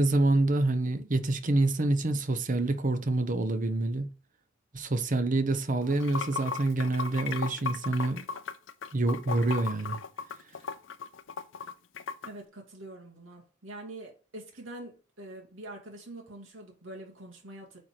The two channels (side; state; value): both; normal; correlation 0.77